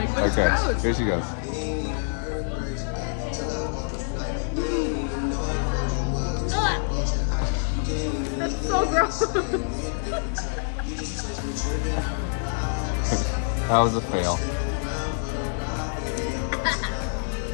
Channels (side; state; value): right; silent; 61 dB below the other